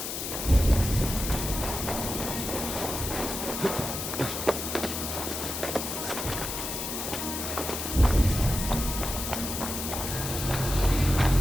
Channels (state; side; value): noise; left; hiss, 4 dB below the sound